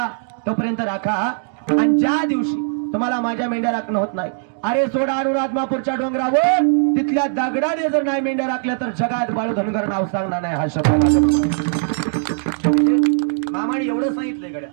तोपर्यंत राखा, आणि ज्या दिवशी तुम्हाला माझ्या मेंढ्या राखणं होत नाही, अरे सोडा आणून आदमापूरच्या डोंगरावर तिथल्या दगडाने जर नाही मेंढ्या राखल्या तर जगात बाळू धनगर नाव सांगणार नाही. हा शब्द माझ्या मामाने एवढं सांगितलंय गड्या,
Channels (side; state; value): left; silent; 66 dB below the other